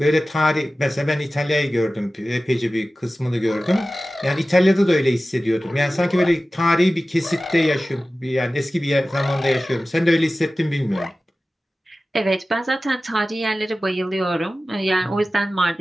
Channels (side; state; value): both; normal; correlation 0.96